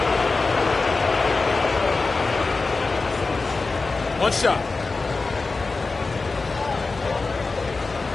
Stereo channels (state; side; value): quieter; right; 3.9 dB